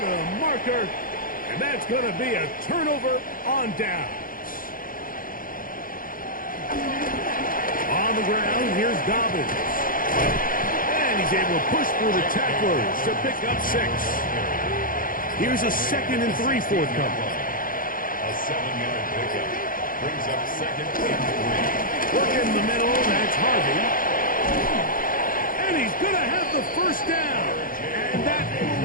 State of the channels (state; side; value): late; right; 0.40 ms